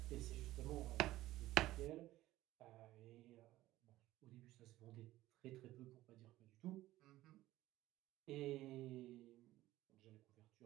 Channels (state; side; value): quieter; left; 16.0 dB